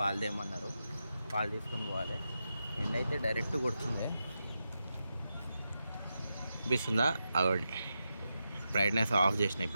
తేమన్నారు, పాలు తీసుకొని పోవాలి. ఎండ అయితే డైరెక్ట్ కొడుతుంది. అనిపిస్తుందా? అగోండి బ్రైట్నెస్ ఆఫ్ చేసిన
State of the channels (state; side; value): inverted; both; correlation -0.88